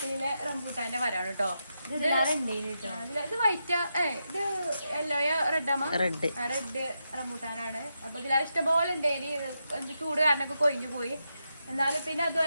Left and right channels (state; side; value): inverted; both; correlation -0.86